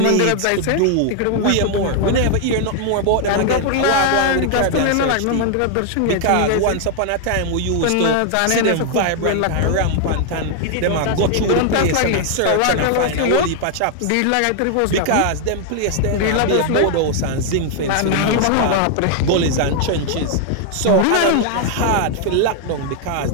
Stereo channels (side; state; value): both; different; correlation 0.00